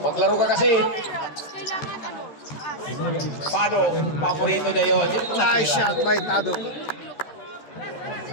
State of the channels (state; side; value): late; right; 13 ms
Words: Maglaro ka kasi. Pado, paborito niya yun. Nice shot by Tado.